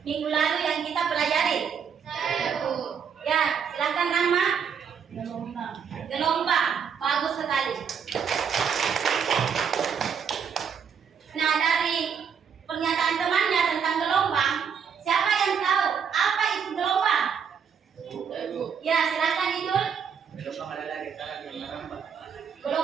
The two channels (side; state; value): left; quieter; 7.0 dB